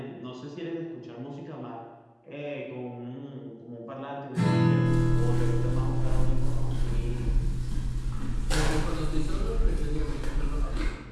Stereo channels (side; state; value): both; identical; correlation 1.00